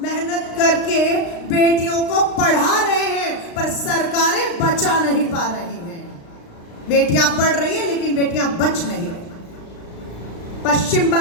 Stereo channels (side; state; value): right; late; 35 ms